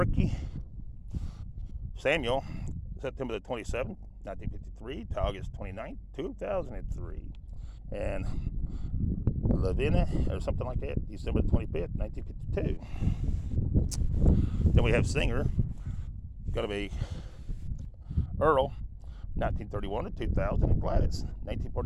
Samuel, September the 27th, 1953 to August 29th, 2003. And Lavina, or something like that, December the 25th, 1952. Then we have singer, going to be Earl, 1931 to 2000, and Gladys,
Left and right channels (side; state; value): both; identical; correlation 1.00